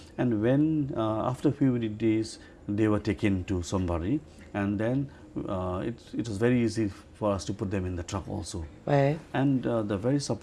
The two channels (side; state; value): both; identical; correlation 1.00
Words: And when after a few days they were taken to Sombari, and then it was very easy for us to put them in the truck also. And the very